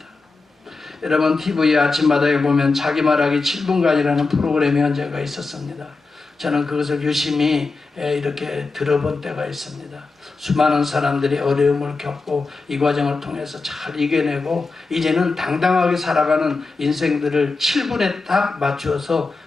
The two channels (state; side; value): quieter; right; 3.9 dB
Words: 여러분 TV 아침마당에 보면 자기 말하기 7분간이라는 프로그램이 언제가 있었습니다. 저는 그것을 유심히 이렇게 들어본 때가 있습니다. 수많은 사람들이 어려움을 겪고 이 과정을 통해서 잘 이겨내고 이제는 당당하게 살아가는 인생들을 7분에 딱 맞추어서